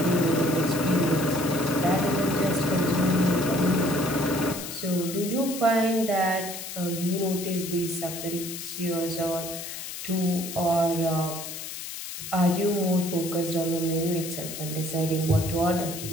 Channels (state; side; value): noise; left; hiss, 8 dB below the sound